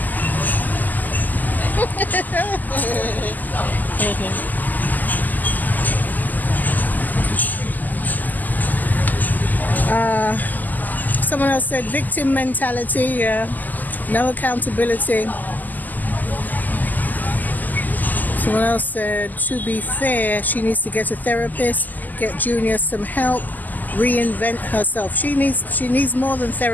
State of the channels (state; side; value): late; right; 0.083 ms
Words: Someone else said victim mentality, no accountability. Someone else said, to be fair, she needs to get a therapist, get Junior some help, reinvent herself. She needs more than